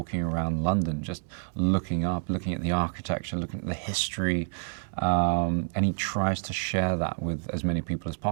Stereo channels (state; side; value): silent; left; digital silence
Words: around London, just looking up, looking at the architecture, looking at the history, and he tries to share that with as many people as